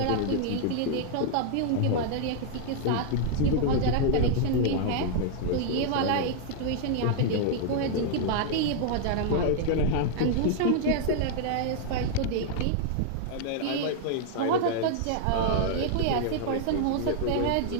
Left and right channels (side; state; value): both; different; correlation -0.01